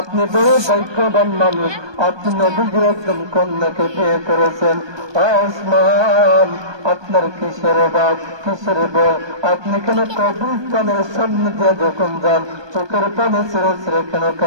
বড় ভাগ্যবান মানুষ, আপনি নবীর একজন কন্যাকে বিয়ে করেছেন। ওসমান, আপনার কিসের বাপ, কিসের বল? আপনি কেন কবরস্থানের সামনে দিয়ে যখন যান চোখের পানি ছেড়ে ছেড়ে কেন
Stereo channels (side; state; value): left; late; 1.2 ms